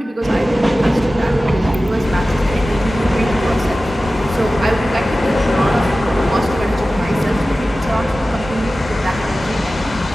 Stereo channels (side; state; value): both; normal; correlation 0.95